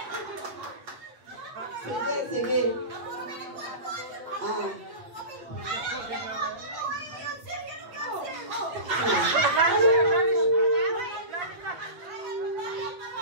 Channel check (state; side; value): late; left; 8.0 ms